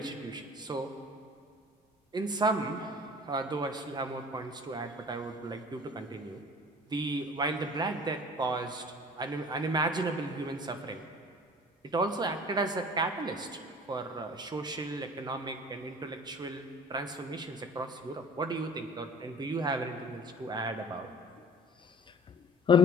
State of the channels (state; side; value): normal; both; correlation 0.45